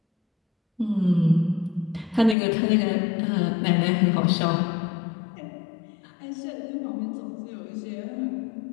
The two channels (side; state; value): right; drops out; at 2.4 s